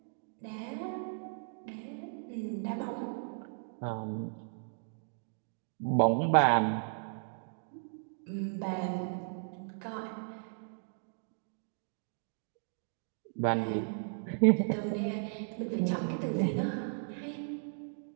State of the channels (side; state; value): left; silent; digital silence